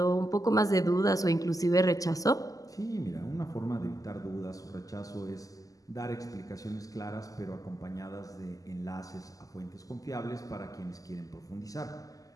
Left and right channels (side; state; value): right; late; 0.17 ms